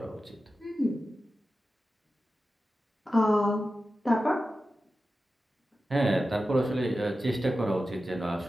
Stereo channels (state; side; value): normal; both; correlation 0.93